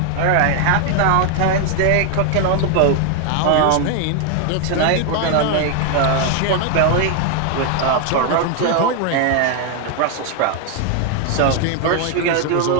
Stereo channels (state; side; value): different; both; correlation 0.00